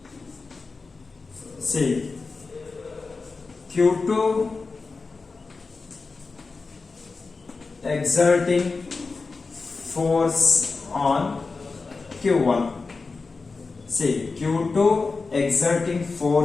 Q2 exerting force on Q1. See, Q2 exerting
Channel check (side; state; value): right; quieter; 4.1 dB